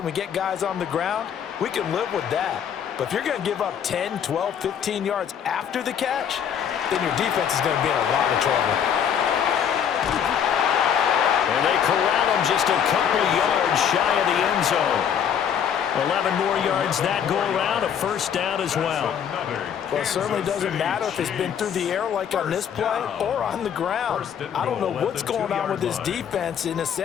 we get guys on the ground, we can live with that. But if you're going to give up 10, 12, 15 yards after the catch, then your defense is going to be in a lot of trouble. And they corral him just a couple yards shy of the end zone. 11 more yards that go around, a first down as well. Well, it certainly doesn't matter if it's been through the air like on this play or on the ground. I don't know what's going on with this defense. In a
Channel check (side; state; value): right; quieter; 8.3 dB